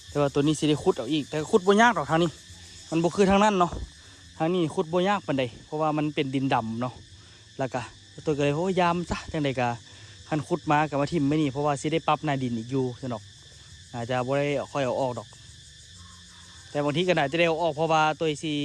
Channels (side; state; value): both; identical; correlation 1.00